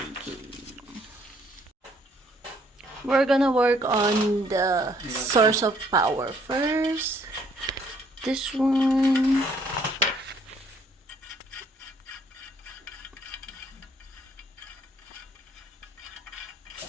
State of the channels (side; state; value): both; normal; correlation 0.65